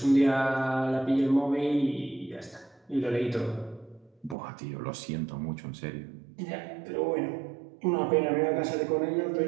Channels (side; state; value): left; drops out; at 4.4 s